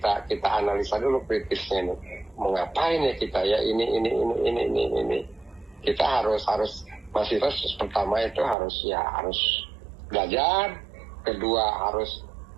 analisa dulu kritisnya ini. Mau ngapain ya kita ya ini. Kita harus mahasiswa pertama itu harus belajar, kedua harus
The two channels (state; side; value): drops out; left; at 8.6 s